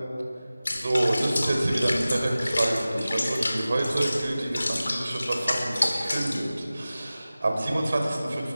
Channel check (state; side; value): inverted; both; correlation -0.96